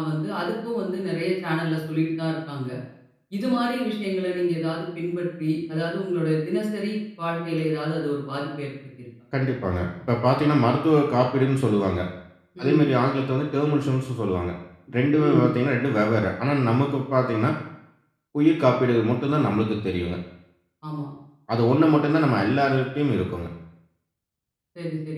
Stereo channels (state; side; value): identical; both; correlation 1.00